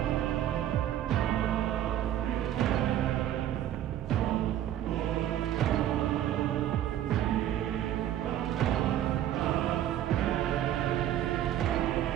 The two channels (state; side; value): quieter; left; 11.8 dB